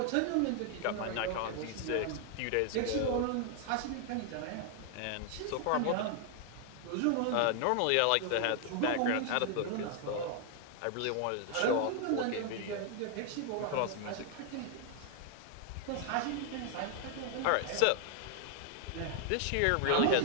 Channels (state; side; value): different; both; correlation 0.00